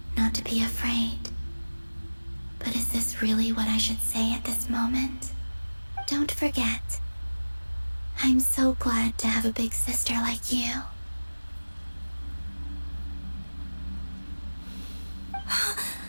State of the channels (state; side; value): inverted; both; correlation -1.00